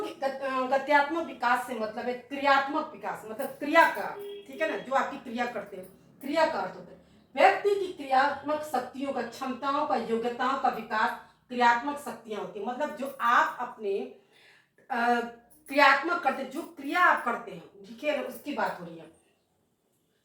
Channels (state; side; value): identical; both; correlation 1.00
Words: विकास से मतलब है क्रियात्मक विकास, मतलब क्रिया का, ठीक है ना, जो आपकी क्रिया करते हैं, क्रिया का अर्थ होता है व्यक्ति की क्रियात्मक शक्तियों का, क्षमताओं का, योग्यताओं का विकास। क्रियात्मक शक्तियां होती है मतलब जो आप अपने क्रियात्मक करते, जो क्रिया आप करते हैं, ठीक है ना, उसकी बात हो रही है।